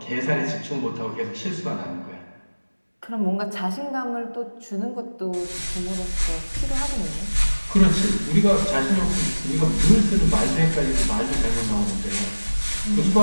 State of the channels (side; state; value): both; inverted; correlation -1.00